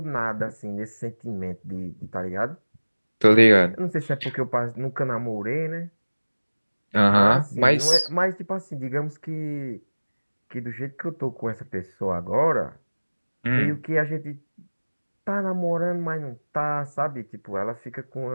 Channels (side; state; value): both; inverted; correlation -1.00